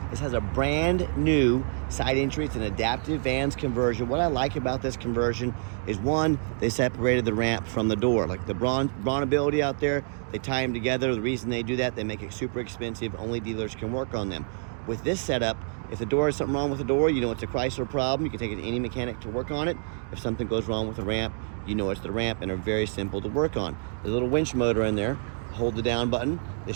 This has a brand new side entry. It's an adaptive vans conversion. What I like about this conversion is, one, they separated the ramp from the door. Like the Brawnability out there, they tie them together. The reason they do that, they make it super expensive. Only dealers can work on them. With this setup, if the door is something wrong with the door, you know it's a Chrysler problem. You can take it to any mechanic to work on it. If something goes wrong with the ramp, you know it's the ramp, and they're very simple to work on. There's a little winch motor in there. Hold the down button.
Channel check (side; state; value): left; silent; 60 dB below the other